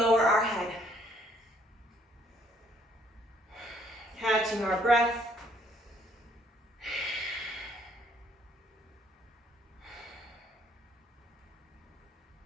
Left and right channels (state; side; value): normal; both; correlation 0.65